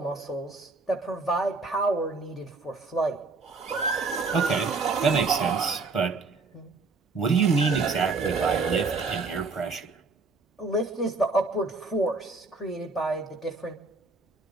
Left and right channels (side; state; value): left; quieter; 4.0 dB